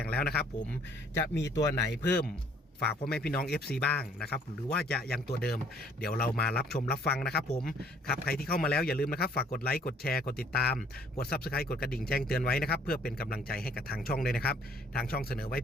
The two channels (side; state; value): both; normal; correlation 0.60